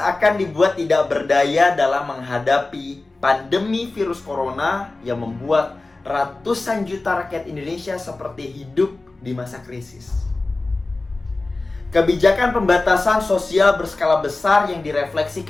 dibuat tidak berdaya dalam menghadapi pandemi virus corona yang membuat ratusan juta rakyat Indonesia seperti hidup di masa krisis. Kebijakan pembatasan sosial berskala besar yang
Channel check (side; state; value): right; quieter; 3.3 dB